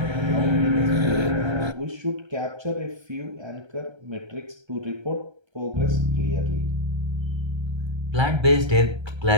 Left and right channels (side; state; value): left; late; 1.3 ms